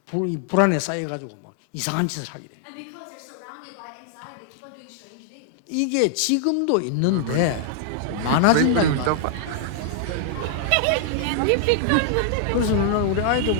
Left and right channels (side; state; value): both; different; correlation -0.01